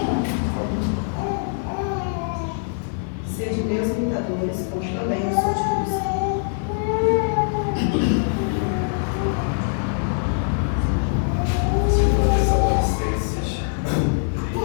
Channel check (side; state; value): right; silent; digital silence